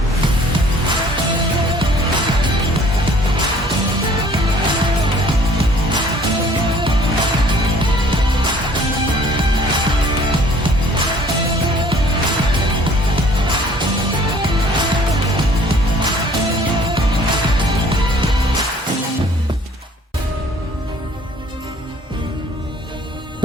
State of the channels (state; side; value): normal; both; correlation 0.55